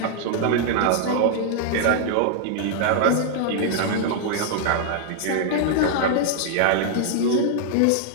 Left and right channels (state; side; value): different; both; correlation -0.01